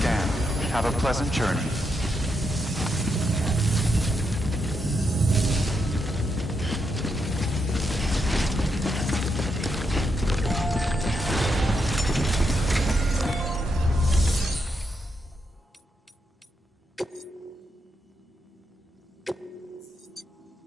Have a pleasant journey.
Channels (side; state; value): both; normal; correlation 0.82